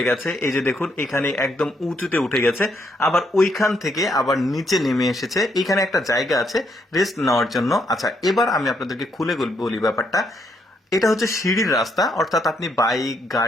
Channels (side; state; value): both; normal; correlation 0.74